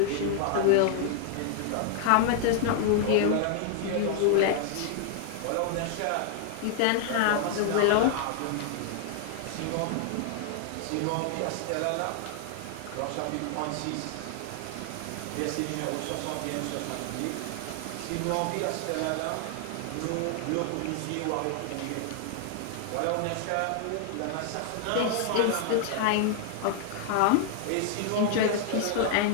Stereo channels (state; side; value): different; both; correlation 0.00